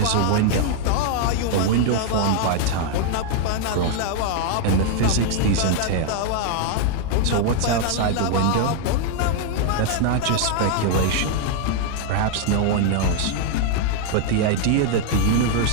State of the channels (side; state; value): both; different; correlation 0.00